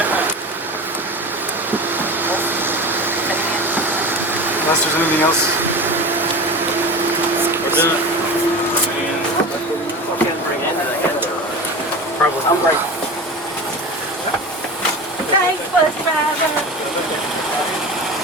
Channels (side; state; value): both; normal; correlation 0.30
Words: Unless there's anything else. We're doing it. Probably. I'm grateful. Thanks, bus driver.